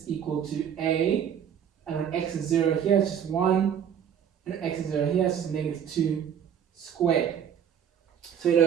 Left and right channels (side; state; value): left; quieter; 8.7 dB